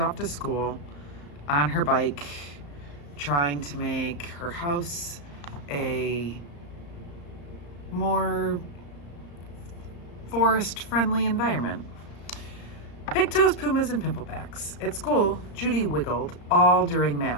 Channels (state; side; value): late; right; 35 ms